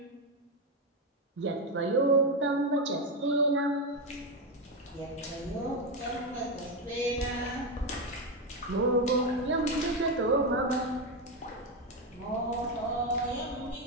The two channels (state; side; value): normal; both; correlation 0.09